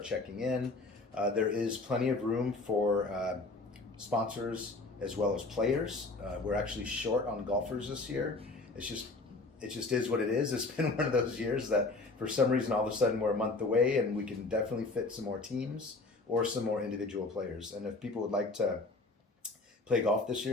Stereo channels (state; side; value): quieter; right; 3.4 dB